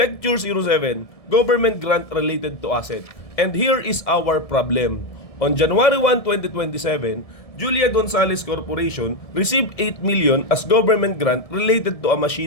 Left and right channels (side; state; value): right; late; 1.7 ms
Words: 07, Government Grant Related to Asset. And here is our problem. On January 1, 2027, Julia Gonzalez Corporation received 8 million as government grant related to a